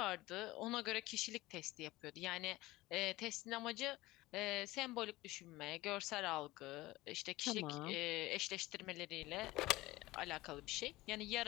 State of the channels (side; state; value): right; quieter; 18.9 dB